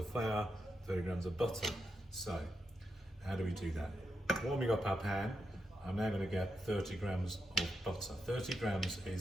flour, 30 grams of butter. So how do we do that? Warming up our pan. I'm now going to get 30 grams of butter. 30 grams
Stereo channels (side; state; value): both; normal; correlation 0.85